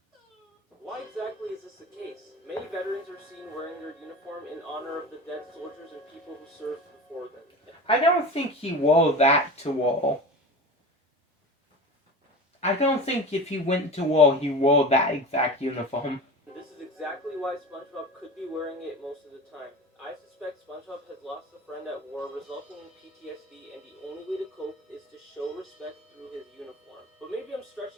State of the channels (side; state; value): both; normal; correlation 0.33